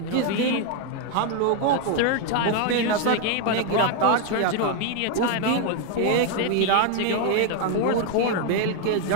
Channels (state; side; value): different; both; correlation 0.01